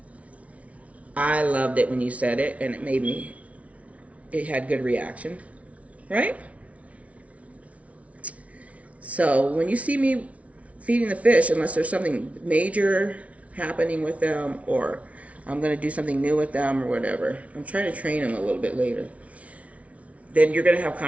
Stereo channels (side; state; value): left; late; 0.065 ms